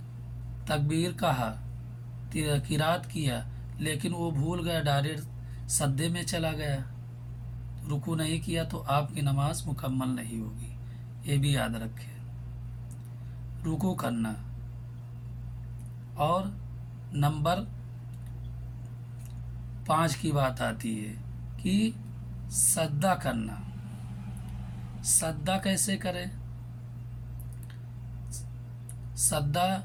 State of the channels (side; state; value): both; identical; correlation 1.00